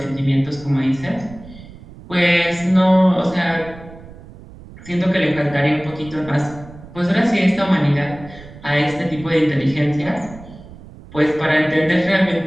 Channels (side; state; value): right; noise; rumble, 18 dB below the sound